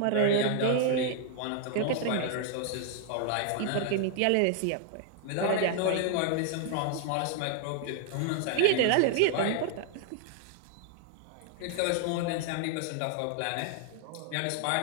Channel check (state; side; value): different; both; correlation 0.00